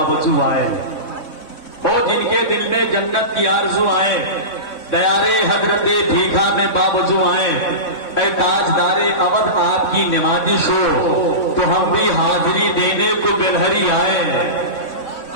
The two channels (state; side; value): late; right; 3.6 ms